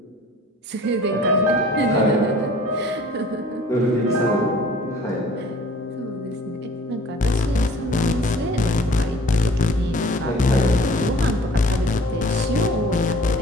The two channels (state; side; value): normal; both; correlation 0.50